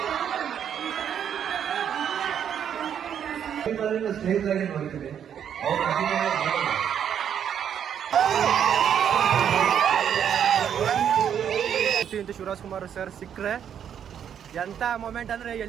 ಸ್ನೇಹಿತರಾಗಿ ನೋಡ್ತೀವಿ. ಶಿವರಾಜ್ ಕುಮಾರ್ ಸರ್ ಸಿಕ್ಕರೆ ಎಂತ ಮೊಮೆಂಟ್ ಅಂದ್ರೆ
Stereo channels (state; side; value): quieter; left; 8.8 dB